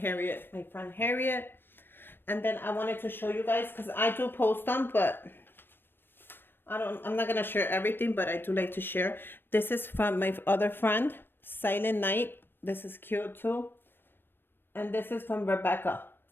my friend Harriet. And then I wanted to show you guys, because I do post them, but I'm not gonna share everything, but I do like to share. This is from my other friend, Silent Night. This is cute too. And this is from Rebecca.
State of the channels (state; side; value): late; right; 0.098 ms